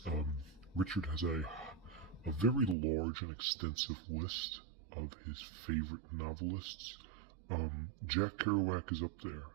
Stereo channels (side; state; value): left; drops out; at 2.8 s